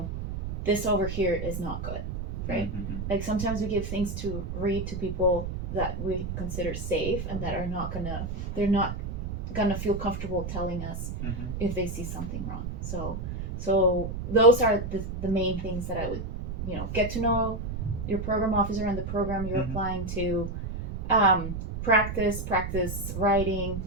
this over here is not good, right? Like sometimes we give things to read to people that we consider safe and that they're not gonna feel comfortable telling us if they see something wrong. So those are the main things that I would, get to know your program officer and the program you're applying to, practice writing,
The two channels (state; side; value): noise; right; rumble, 5 dB below the sound